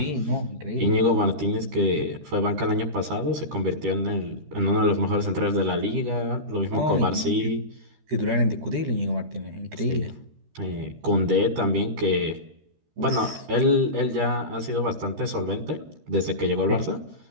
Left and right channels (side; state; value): left; late; 13 ms